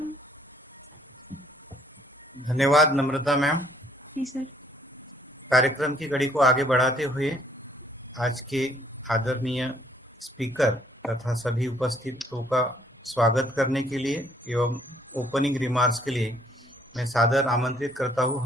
धन्यवाद नम्रता मैम। जी सर। कार्यक्रम की कड़ी को आगे बढ़ाते हुए आज के आदरणीय स्पीकर तथा सभी उपस्थितों का स्वागत करने के लिए एवं ओपनिंग रिमार्क्स के लिए मैं सादर आमंत्रित करता हूं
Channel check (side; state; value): both; normal; correlation 0.64